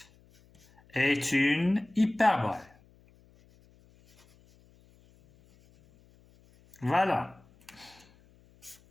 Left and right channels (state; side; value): noise; left; hum, 30 dB below the sound